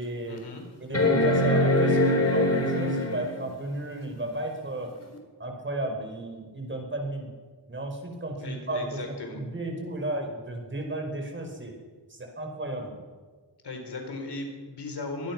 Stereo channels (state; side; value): normal; both; correlation 0.06